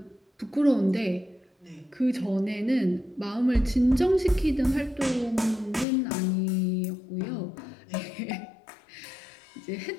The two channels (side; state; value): right; drops out; at 5.9 s